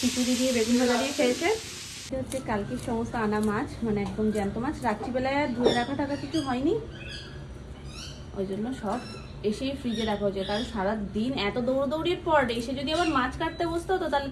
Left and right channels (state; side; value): identical; both; correlation 1.00